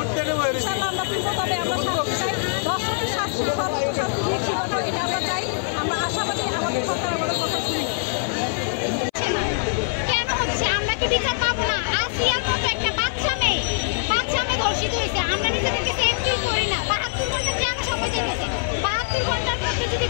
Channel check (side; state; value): right; silent; 57 dB below the other